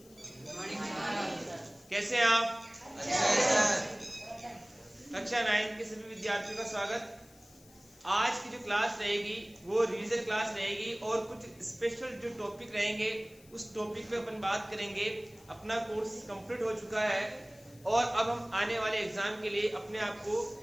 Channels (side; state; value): left; noise; hiss, 25 dB below the sound